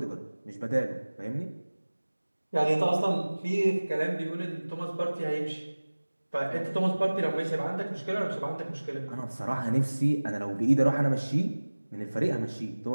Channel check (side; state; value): both; inverted; correlation -1.00